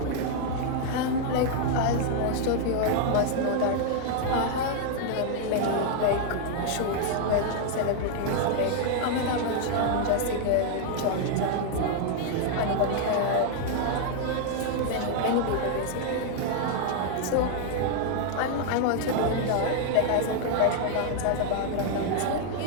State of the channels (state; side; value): different; both; correlation 0.00